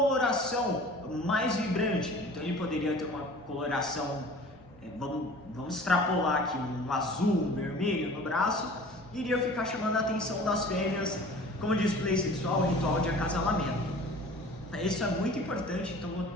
mais vibrante. Então ele poderia ter uma coloração, vamos extrapolar aqui, um azul, um vermelho no braço, e iria ficar chamando a atenção das fêmeas como display sexual, ritual de acasalamento. Isso é muito importante, então vou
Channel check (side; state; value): both; normal; correlation 0.44